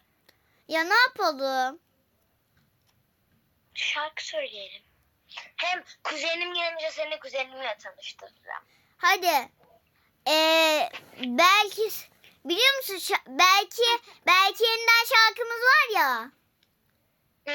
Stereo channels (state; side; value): identical; both; correlation 1.00